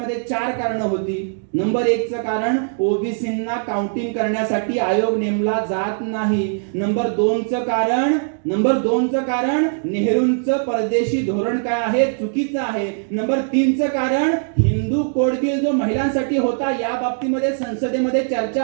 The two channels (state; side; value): silent; left; digital silence